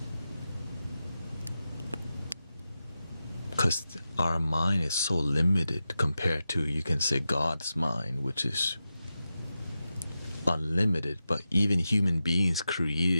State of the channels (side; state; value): both; inverted; correlation -0.91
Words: Because our mind is so limited compared to, you can say, God's mind, which is unlimited. But even human beings